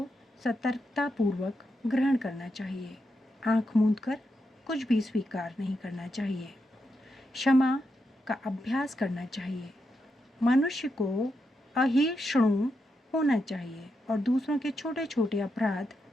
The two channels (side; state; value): both; normal; correlation 0.84